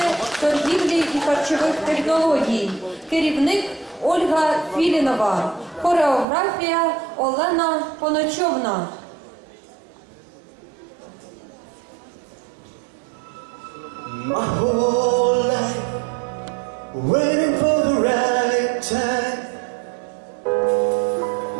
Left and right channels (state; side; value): drops out; left; at 6.2 s